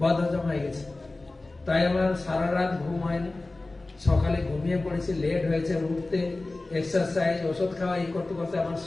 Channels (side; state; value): right; quieter; 3.1 dB